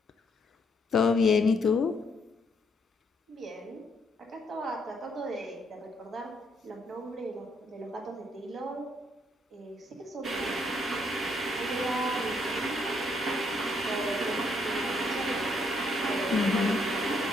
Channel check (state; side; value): normal; both; correlation 0.72